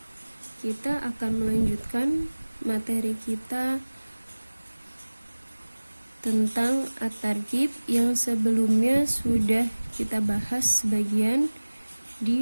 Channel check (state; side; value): inverted; both; correlation -1.00